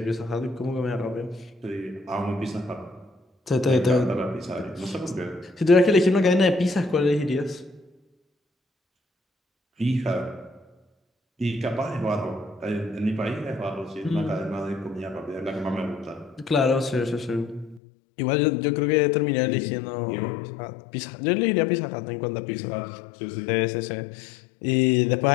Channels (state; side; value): drops out; right; at 17.8 s